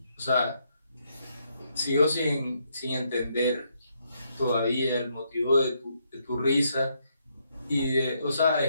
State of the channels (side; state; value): both; inverted; correlation -0.76